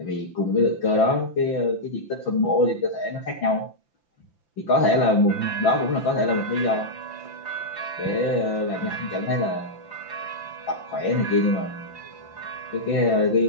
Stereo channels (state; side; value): late; right; 5.9 ms